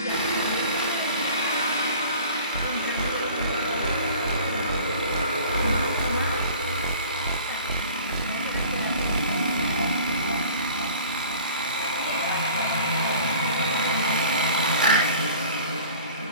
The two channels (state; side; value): inverted; both; correlation -0.45